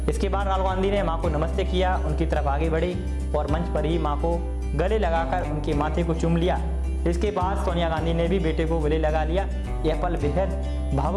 इसके बाद राहुल गांधी ने मां को नमस्ते किया, उनकी तरफ आगे बढ़े और मंच पर ही मां को गले लगाकर उनके माथे को चूम लिया। इसके बाद सोनिया गांधी ने भी बेटे को गले लगा लिया। यह पल बेहद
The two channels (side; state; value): both; identical; correlation 1.00